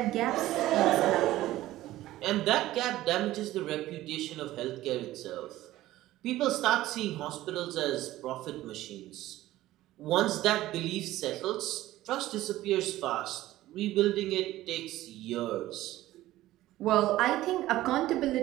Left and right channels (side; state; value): left; quieter; 15.6 dB